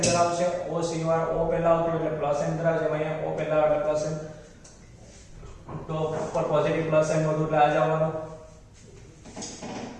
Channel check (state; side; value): identical; both; correlation 1.00